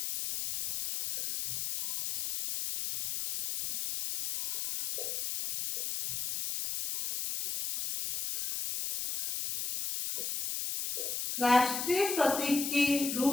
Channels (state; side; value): noise; left; hiss, 3 dB below the sound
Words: राष्ट्रीय प्रतीक के